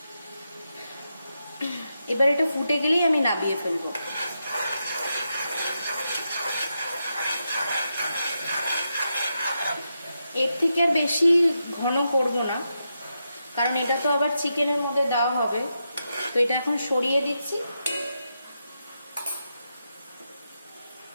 এবার এটা ফুটে গেলেই আমি নামিয়ে ফেলবো। এর থেকে আর বেশি ঘন করব না, কারণ এটা তো আবার চিকেনের মধ্যে দেওয়া হবে। তো এটা এখন সরিয়ে দিচ্ছি।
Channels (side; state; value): both; inverted; correlation -0.86